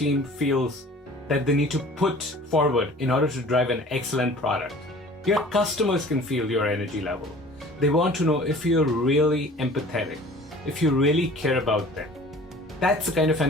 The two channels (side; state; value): both; normal; correlation 0.46